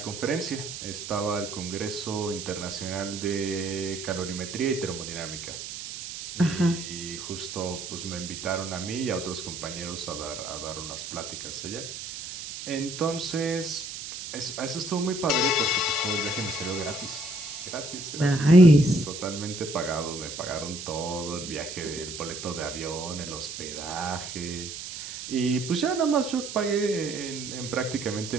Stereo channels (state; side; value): noise; right; hiss, 8 dB below the sound